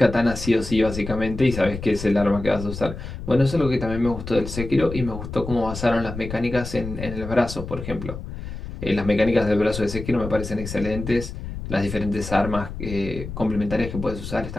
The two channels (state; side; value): noise; left; rumble, 9 dB below the sound